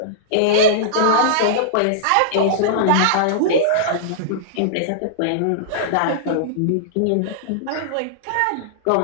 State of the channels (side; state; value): both; different; correlation -0.02